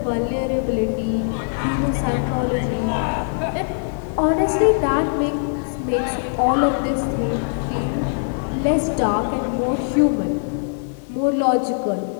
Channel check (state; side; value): silent; right; digital silence